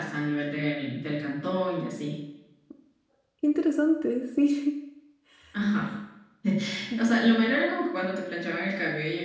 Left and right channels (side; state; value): both; identical; correlation 1.00